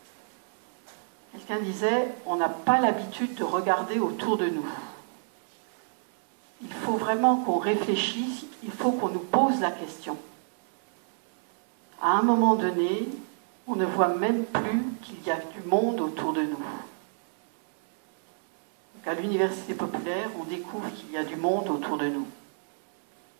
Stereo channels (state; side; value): silent; left; 59 dB below the other